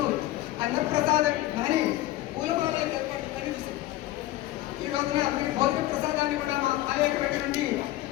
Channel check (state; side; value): quieter; right; 15.6 dB